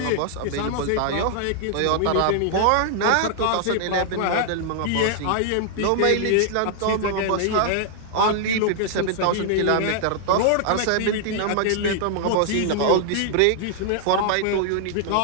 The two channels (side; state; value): both; different; correlation -0.01